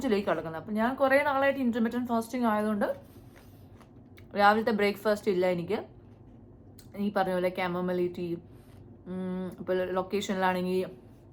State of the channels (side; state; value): both; identical; correlation 1.00